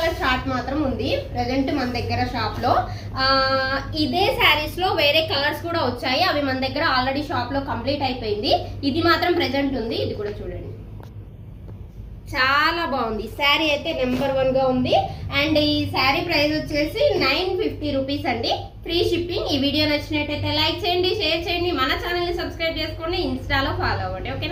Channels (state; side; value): identical; both; correlation 1.00